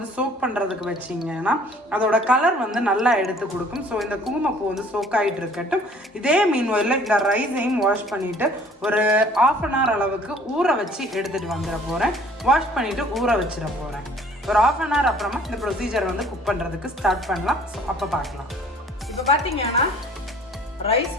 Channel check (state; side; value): normal; both; correlation 0.54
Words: சோக் பண்ணுறதுக்கு வச்சிங்கன்னா அதோட கலர் வந்து நல்லா எடுத்து கொடுக்கும். ஸோ இந்த குங்குமப்பூ வந்து சோக் ஆகிட்டு இருக்கட்டும். இதே மீன்வெளியில் இந்த ரைஸையும் வாஷ் பண்ணிவிட்டு ஒரு 1/2 அன் ஹவர் அளவுக்கு ஊற வச்சு எடுத்துகிட்டு வந்துட போகிறேன். வாஷ் பண்ணிவிட்டு ஊற வச்சிட போகிறேன். ஒரு 1/2 அன் ஹவர் அப்புறமா இந்த ப்ரொசீஜர் வந்து குக் பண்ணுறதுக்கு ஸ்டார்ட் பண்ணலாம். ஸோ அப்போ பார்க்கலாம். இப்போ பார்த்தீங்கன்னா ரைஸ்